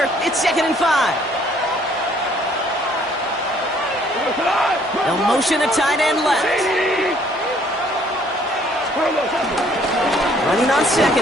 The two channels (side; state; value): both; normal; correlation 0.62